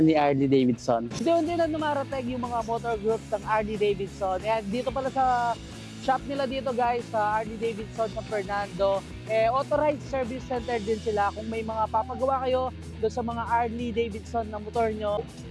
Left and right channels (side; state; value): both; identical; correlation 1.00